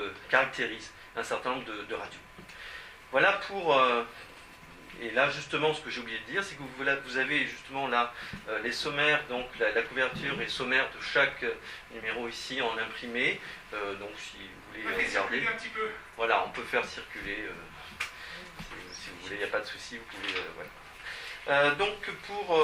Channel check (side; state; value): both; identical; correlation 1.00